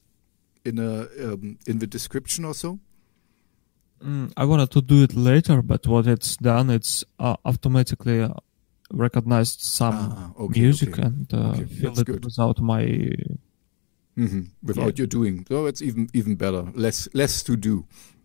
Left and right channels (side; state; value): right; quieter; 35.2 dB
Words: the description also? I wanted to do it later, but what it's done, it's automatically recognized some music and filled it good. without my without you doing. So it's even better. Less to do.